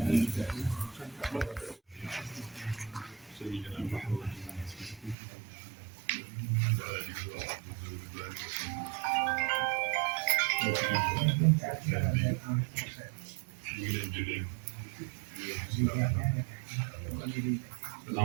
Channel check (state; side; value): drops out; left; at 5.2 s